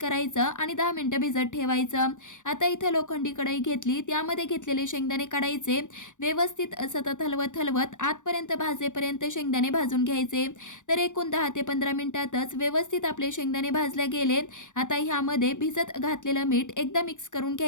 आणि 10 मिनिटं भिजत ठेवायचं. आता इथं लोखंडी कढई घेतली, त्यामध्ये घेतलेले शेंगदाणे काढायचे. व्यवस्थित सतत हलवत हलवत आतपर्यंत भाजेपर्यंत शेंगदाणे भाजून घ्यायचे. तर एकूण 10 ते 15 मिनिटातच व्यवस्थित आपले शेंगदाणे भाजले गेले. आता ह्यामध्ये भिजत घातलेलं मीठ एकदा मिक्स करून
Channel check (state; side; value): late; right; 0.86 ms